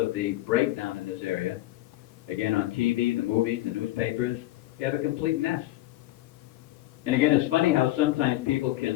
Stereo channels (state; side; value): quieter; right; 16.4 dB